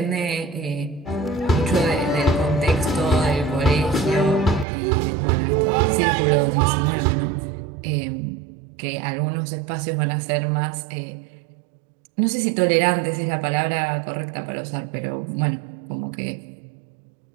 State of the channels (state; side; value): drops out; left; at 4.7 s